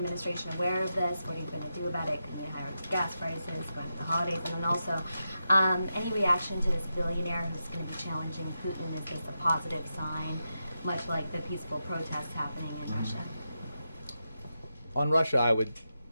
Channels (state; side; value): inverted; both; correlation -0.88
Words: aware of this? What are you going to do about it? Can you higher gas prices going into the holidays? And then also, any reaction to this billionaire who's going to be challenging Putin? Is this a positive sign, much like the peaceful protests happening in Russia? On Russia, I would